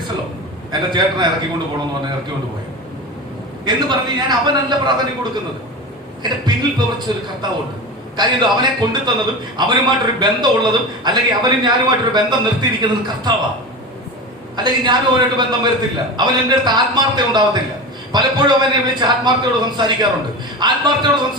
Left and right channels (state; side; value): normal; both; correlation 0.27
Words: എന്റെ ചേട്ടനെ ഇറക്കിക്കൊണ്ട് പോകണമെന്ന് പറഞ്ഞ് ഇറക്കിക്കൊണ്ട് പോയത് എന്ന് പറഞ്ഞ് ഞാൻ അവനല്ല പ്രാധാന്യം കൊടുക്കുന്നത്. എന്റെ പിന്നിൽ പ്രവർത്തിച്ച ഒരു കർത്താവുണ്ട്. കാര്യം അവനെ കൊണ്ടുതന്നതും അവനുമായിട്ടൊരു ബന്ധമുള്ളതും, അല്ലെങ്കിൽ അവനും ഞാനുമായിട്ടൊരു ബന്ധം നിർത്തിയിരിക്കുന്നതും കർത്താവാ. അല്ലെങ്കിൽ ഞാനും അവനായിട്ട് ബന്ധം വരത്തില്ല. അവൻ എൻ്റെ അടുത്ത് ആത്മാർത്ഥത ഉണ്ടാവത്തില്ല. പലപ്പോഴും അവനെ വിളിച്ച് ആത്മാർത്ഥയോട് സംസാരിക്കാറുണ്ട്. ആത്മാർത്ഥയോട്